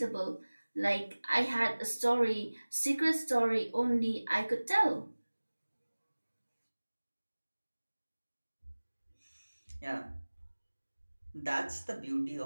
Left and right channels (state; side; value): inverted; both; correlation -1.00